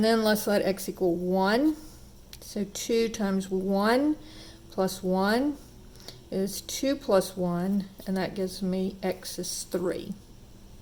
then let's let x equal 1. So 2 times 1 plus 1 is 2 plus 1, and that gives me x is 3.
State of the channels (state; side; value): identical; both; correlation 1.00